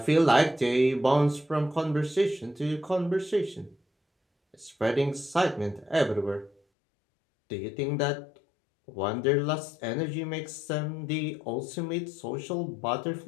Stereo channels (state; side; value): drops out; right; at 6.6 s